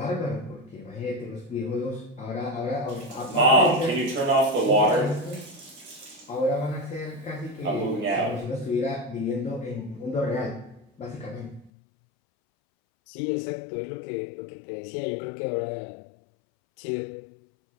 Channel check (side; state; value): right; drops out; at 11.7 s